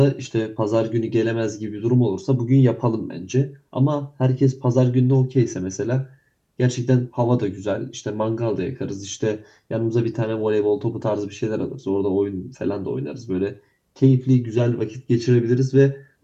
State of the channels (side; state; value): both; identical; correlation 1.00